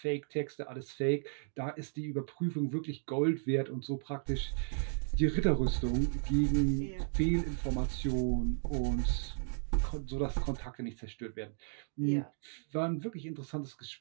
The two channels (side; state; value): left; silent; digital silence